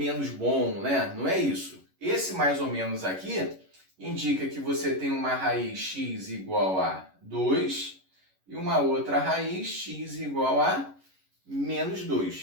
bom, né? Não é isso. Esse mais ou menos aqui indica que você tem uma raiz x igual a 2 e uma outra raiz x igual a menos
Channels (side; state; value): left; late; 11 ms